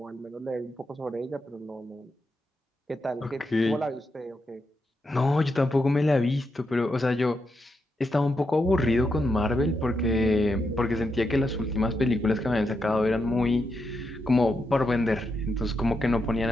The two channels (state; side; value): normal; both; correlation 0.84